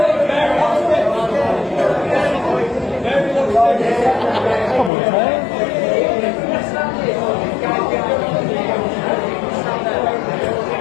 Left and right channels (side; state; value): right; drops out; at 4.9 s